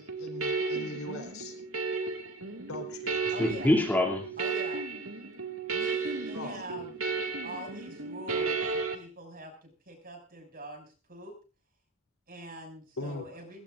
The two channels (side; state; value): both; normal; correlation 0.41